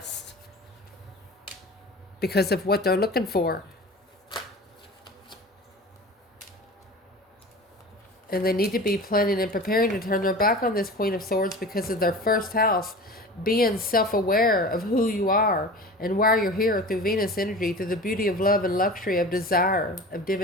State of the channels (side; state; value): both; normal; correlation 0.36